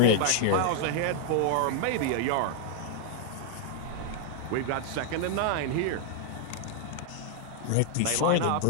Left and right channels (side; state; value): both; different; correlation 0.00